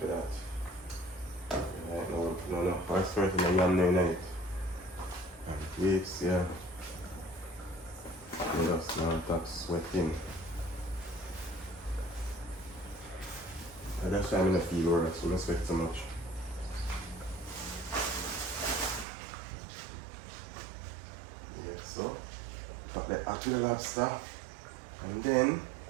to that. Right, no, first person I am night. And weeks, yeah. You just now stop sweating. I just try to feel worse, so don't sweat so much. Yeah, so cut the apple lobster and then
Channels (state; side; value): drops out; left; at 19.1 s